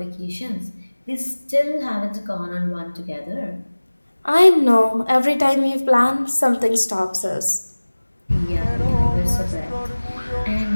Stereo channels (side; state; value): both; inverted; correlation -1.00